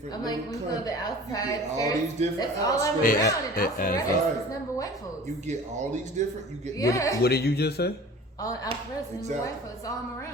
I'm like, little we go to countries, the outside. you get all these different That's all I'm outskirts. around. And Alpharetta right. is number white folks. You get all these different, you get Yeah. What did you just say? All Alpharetta is number Exactly. white folks. All I'm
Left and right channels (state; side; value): normal; both; correlation 0.43